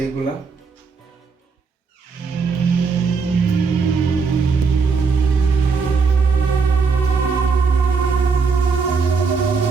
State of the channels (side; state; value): left; quieter; 5.0 dB